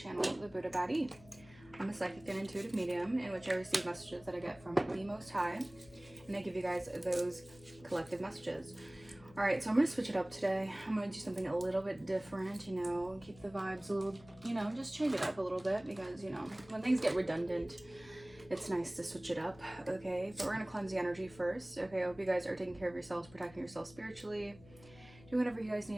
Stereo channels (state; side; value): noise; left; hum, 21 dB below the sound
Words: The Buddha Baddie. I'm a psychic and intuitive medium in which I receive messages that I get from the Most High, and I give you guys those collective messages. Alright, so I'm going to switch it up today. I'm going to do something a little bit different, you know, keep the vibes a little, you know, just change it up a little bit because, you know, when things get redundant, it's nice to switch it up, okay? But we're going to cleanse the energy first, okay? I hope you guys are taking care of yourselves, protecting yourselves spiritually, do whatever you guys